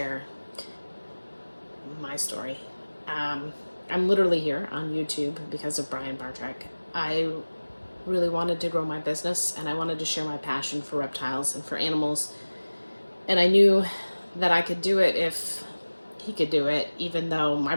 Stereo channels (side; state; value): both; inverted; correlation -1.00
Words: my story. Um, I'm literally here on YouTube because of Brian Barczyk. I really wanted to grow my business and I wanted to share my passion for reptiles and for animals. And I knew that I could do it if he could do it, even though my